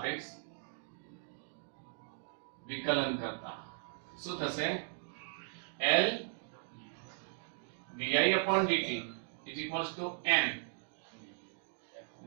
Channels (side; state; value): left; silent; digital silence